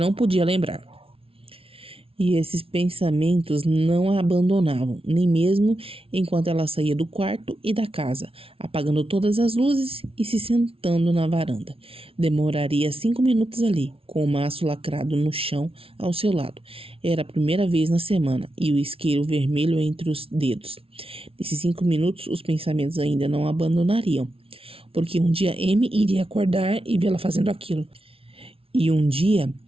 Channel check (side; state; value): left; late; 0.26 ms